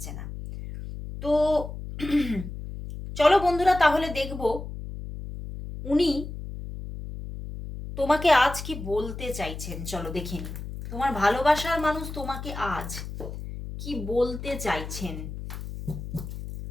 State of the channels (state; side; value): noise; left; hum, 9 dB below the sound